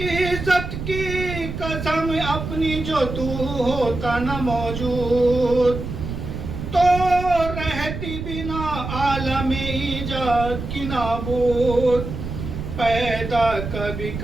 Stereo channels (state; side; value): noise; right; rumble, 6 dB below the sound